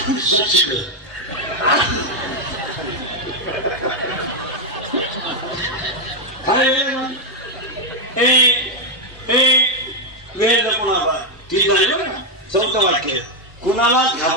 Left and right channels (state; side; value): normal; both; correlation 0.02